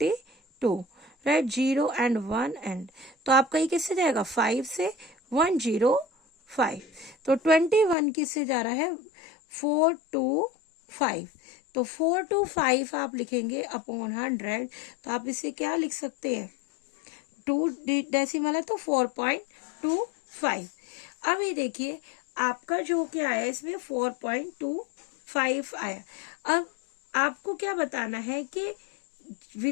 राइट, 0 एंड 1 एंड, तो आपका ये किससे जाएगा 5 से 105, तो 21 किससे जा रहा है 4 to 5, तो 4 to 5 आप लिखेंगे अपॉन 100, तो आप इसे क्या लिख सकते हैं 2 डेसिमल है तो 4.25। अब ये देखिए आपका जो क्या है इसमें 4.25 आया। अब आपको क्या बताना है कि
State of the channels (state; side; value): drops out; right; at 8.0 s